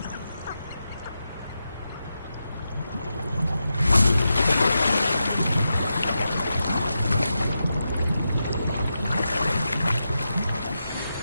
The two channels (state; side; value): inverted; both; correlation -0.88